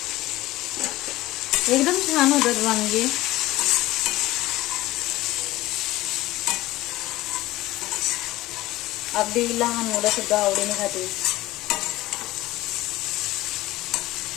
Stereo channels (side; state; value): right; quieter; 17.5 dB